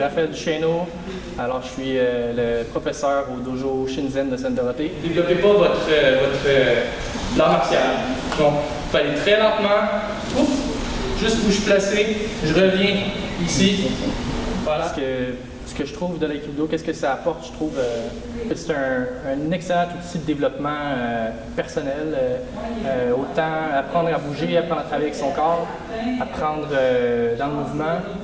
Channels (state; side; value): identical; both; correlation 1.00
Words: Duchesneau, alors je suis le professeur au dojo Shinzen de Sainte-Dorothée. Développez pas votre l'art martial. Donc, il fallait très lentement, ouf, juste où je suis placé, je reviens ici. Voilà. Ce que je trouve de l'aïkido, qu'est-ce que ça apporte? Je trouve que c'est un excellent outil de développement personnel. Autant apprendre à bouger, apprendre à travailler avec son corps, apprendre dans le mouvement,